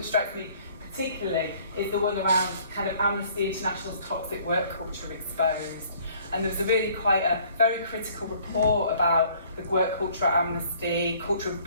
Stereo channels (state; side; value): inverted; both; correlation -0.57